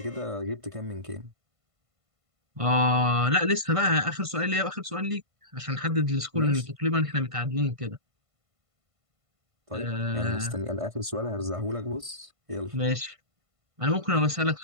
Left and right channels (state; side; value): late; left; 1.5 ms